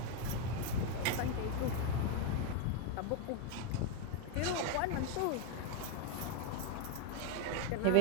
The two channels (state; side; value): different; both; correlation 0.01